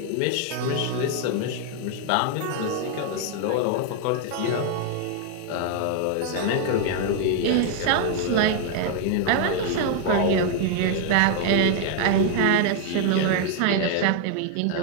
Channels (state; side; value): different; both; correlation 0.00